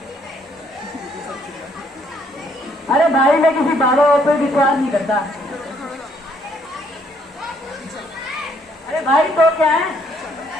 अरे भाई मैं किसी बाबा पर विश्वास नहीं करता। अरे भाई तो क्या है?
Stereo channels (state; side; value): normal; both; correlation 0.68